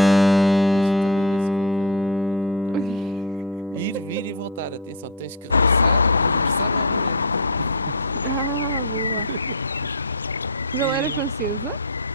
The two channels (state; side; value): normal; both; correlation 0.09